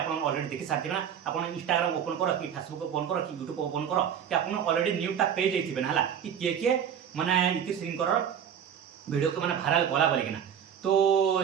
ऑलरेडी देखि सारथिबे ना आपन इंस्टाग्राम ओपन करो कि फेसबुक ओपन करो कि यूट्यूब ओपन करो कि आपन ऑलरेडी न्यूटा पेज थिबे हला कि के माने इतिश्री भिडियो को माने भाइराल कला बोलिकिना तो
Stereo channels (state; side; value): quieter; left; 8.5 dB